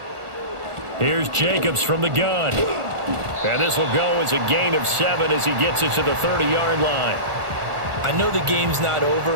Here's Jacobs from the gun. And this will go as a gain of 7 as he gets it to the 30-yard line. I know the game's not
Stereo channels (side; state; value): left; late; 1.4 ms